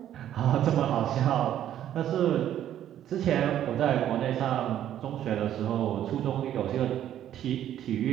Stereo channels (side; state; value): left; quieter; 11.2 dB